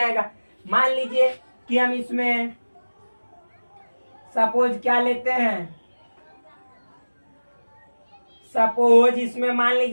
मान लीजिए कि हम इसमें सपोज क्या लेते हैं, सपोज इसमें मान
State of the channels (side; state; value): both; inverted; correlation -1.00